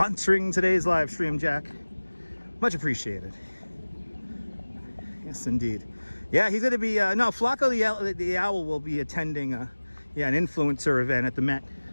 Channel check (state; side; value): inverted; both; correlation -1.00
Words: today's live stream, Jack. Much appreciated. Yes, indeed. Yeah, he's going to be, no, Flacco the owl will be attending, an influencer event at the Met.